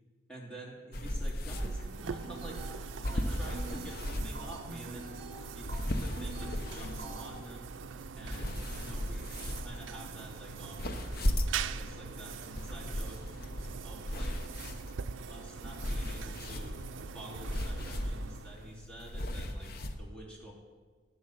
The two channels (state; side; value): normal; both; correlation 0.78